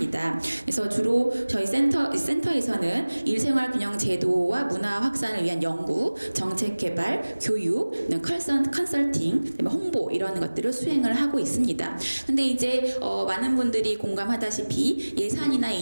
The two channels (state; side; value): inverted; both; correlation -1.00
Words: 그래서 주로 저희 센터에서는 일생활 균형 제도와 문화 확산을 위한 연구, 정책 개발, 교육, 컨설팅, 홍보 이런 것들을 수행을 하고 있습니다. 근데 이제 많은 분들이 공감하다시피 예산이나